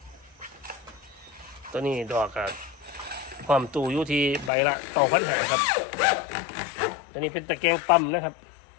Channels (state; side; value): drops out; right; at 4.5 s